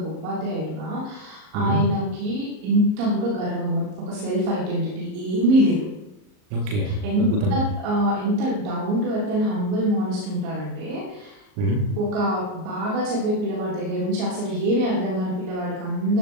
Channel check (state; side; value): late; left; 38 ms